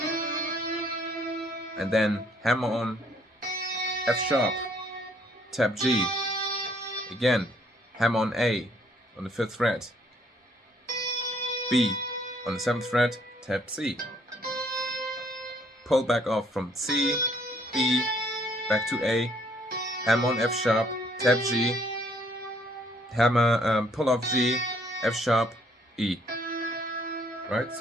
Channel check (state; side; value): normal; both; correlation 0.65